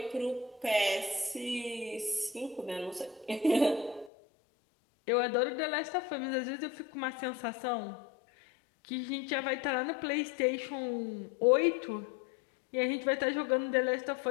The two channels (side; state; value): right; drops out; at 4.1 s